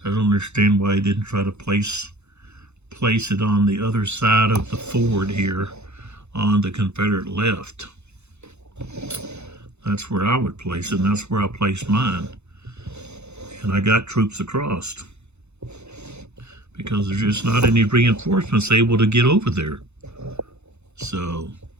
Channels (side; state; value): left; late; 0.81 ms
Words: I don't understand why he didn't try to place it on the other side of the ford here on the Confederate left. That's where I would place it, and that's where I placed mine. And I got troops across because there's just not any reinforcements able to get over there. So,